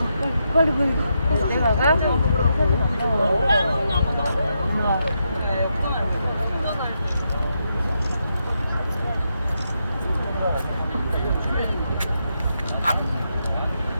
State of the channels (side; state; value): both; inverted; correlation -0.83